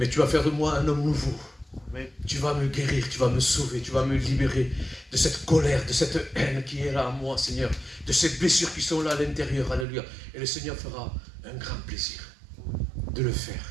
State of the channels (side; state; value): left; drops out; at 9.9 s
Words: tu vas faire de moi un homme nouveau. Tu vas me guérir. Tu vas me sauver. Tu vas me libérer de cette colère, de cette haine qui est là en moi, Seigneur. De ces blessures qui sont là à l'intérieur. Alléluia. Et le Seigneur fera un grand plaisir de le